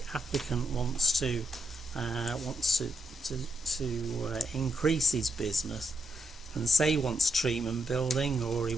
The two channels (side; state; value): both; normal; correlation 0.81